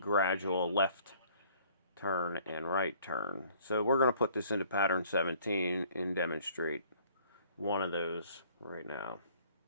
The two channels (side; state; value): both; inverted; correlation -0.58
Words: left turn and right turn. So we're going to put this into pattern 17 and demonstrate one of those right now.